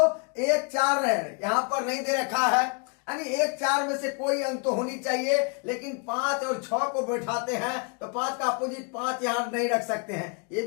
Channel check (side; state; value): right; quieter; 35.6 dB